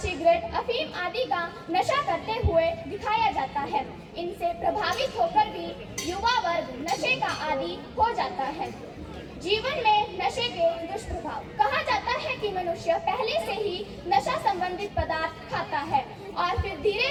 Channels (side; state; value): both; identical; correlation 1.00